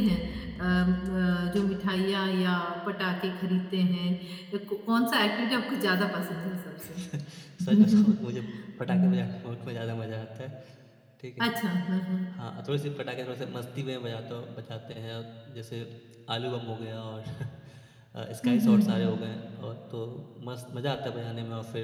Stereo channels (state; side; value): identical; both; correlation 1.00